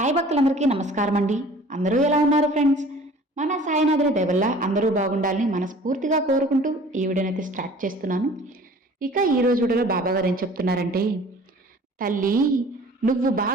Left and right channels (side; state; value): both; normal; correlation 0.48